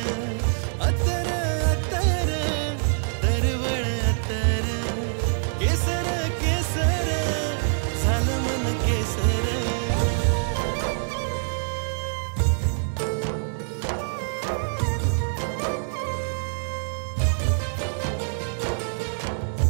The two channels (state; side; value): silent; left; digital silence